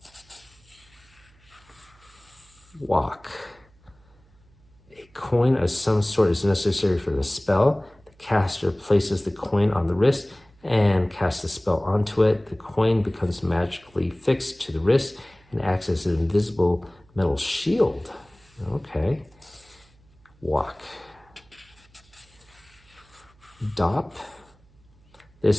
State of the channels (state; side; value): noise; right; hum, 30 dB below the sound